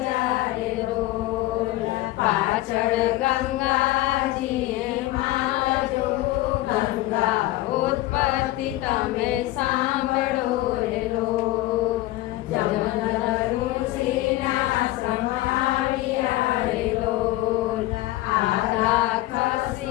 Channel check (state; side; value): quieter; right; 17.2 dB